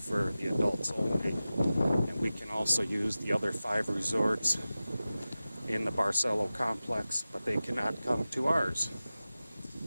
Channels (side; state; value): both; inverted; correlation -0.96